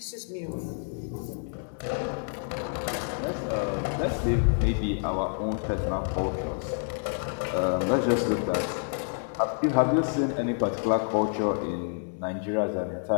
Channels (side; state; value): right; silent; 58 dB below the other